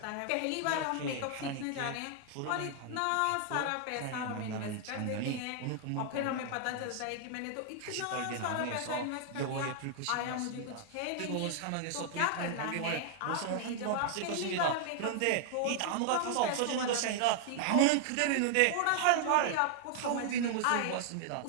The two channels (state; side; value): different; both; correlation 0.00